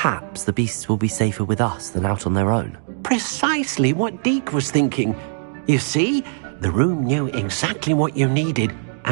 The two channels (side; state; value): left; silent; digital silence